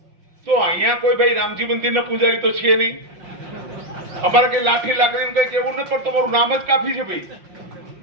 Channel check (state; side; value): late; left; 5.6 ms